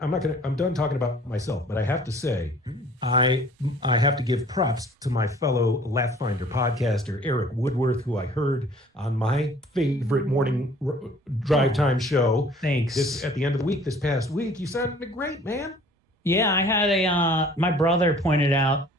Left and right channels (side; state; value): both; normal; correlation 0.53